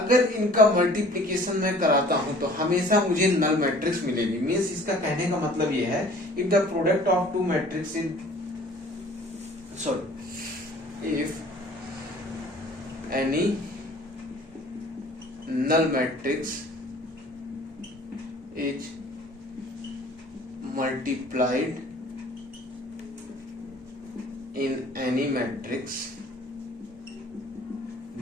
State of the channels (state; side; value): normal; both; correlation 0.50